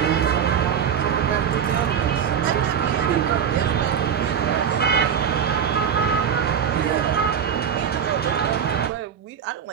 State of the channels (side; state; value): left; quieter; 8.0 dB